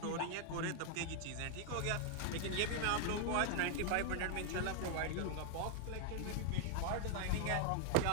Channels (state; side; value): different; both; correlation 0.00